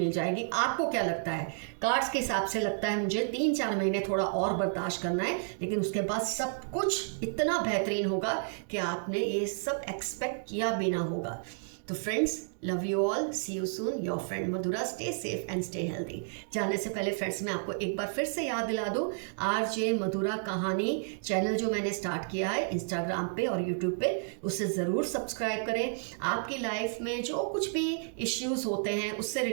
जाएगी। आपको क्या लगता है? कार्ड्स के हिसाब से लगता है मुझे 3-4 महीने थोड़ा और बर्दाश्त करना है, लेकिन उसके बाद सब कुछ इतना बेहतरीन होगा कि आपने ये सब एक्सपेक्ट किया भी ना होगा। तो friends, love you all, see you soon, your friend Madhura. Stay safe and stay healthy. जाने से पहले फ्रेंड्स मैं आपको एक बार फिर से याद दिला दूं, RJ मधुरा कहानी चैनल जो मैंने स्टार्ट किया है इंस्टाग्राम पे और यूट्यूब पे, उसे ज़रूर सब्सक्राइब करें। आपकी लाइफ में जो कुछ भी इश्यूज होते हैं उससे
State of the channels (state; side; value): silent; left; digital silence